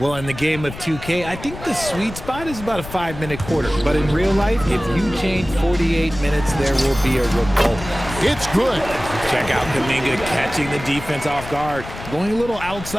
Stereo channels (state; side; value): noise; left; rumble, 12 dB below the sound